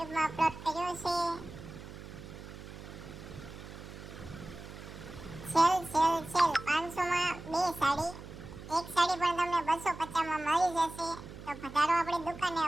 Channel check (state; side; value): noise; right; hum, 13 dB below the sound